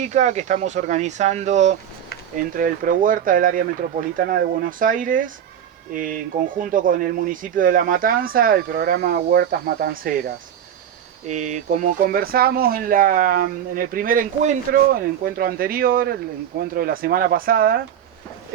que estamos organizando entre el ProHuerta del área metropolitana de Buenos Aires, en conjunto con el municipio de La Matanza, el programa Huertas Matanceras. Como conversamos en el primer encuentro, el encuentro anterior, el encuentro de la semana pasada,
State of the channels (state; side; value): quieter; left; 9.6 dB